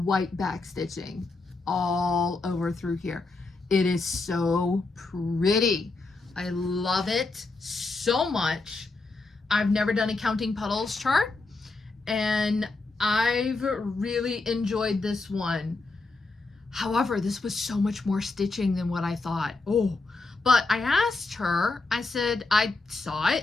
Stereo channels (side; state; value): right; quieter; 3.5 dB